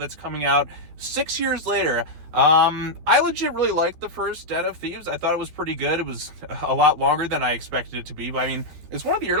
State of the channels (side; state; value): left; late; 13 ms